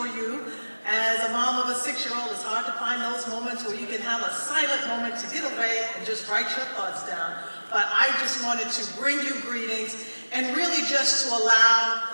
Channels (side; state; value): both; inverted; correlation -1.00